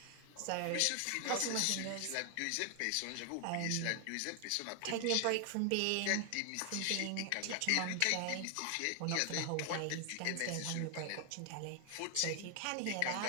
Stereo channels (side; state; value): both; different; correlation 0.00